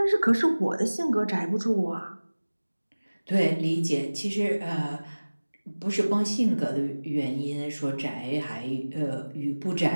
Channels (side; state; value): both; inverted; correlation -1.00